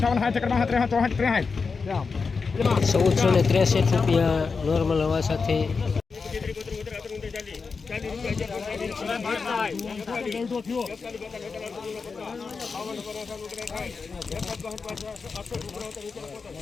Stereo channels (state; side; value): quieter; right; 4.9 dB